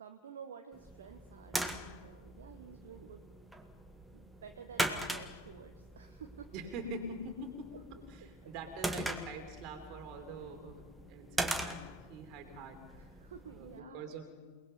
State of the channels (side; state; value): both; normal; correlation 0.60